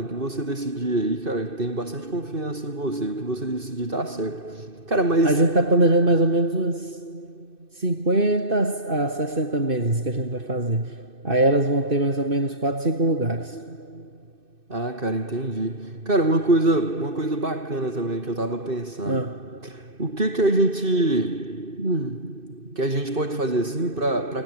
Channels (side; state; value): left; late; 2.6 ms